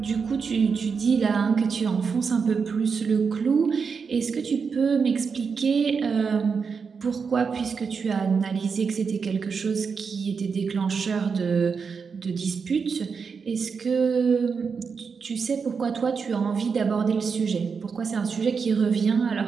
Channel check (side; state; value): left; quieter; 5.6 dB